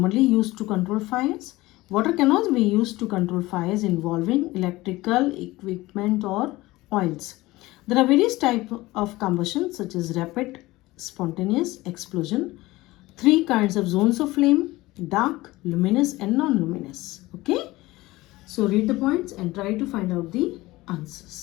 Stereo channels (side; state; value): right; quieter; 19.2 dB